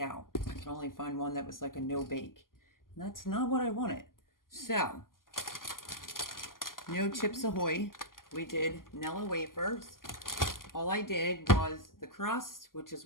I could only find one that was like a no bake, and that's not what I wanted. So no Chips Ahoy. We did Nilla wafers. All I did was the crust, which is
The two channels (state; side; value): late; right; 0.91 ms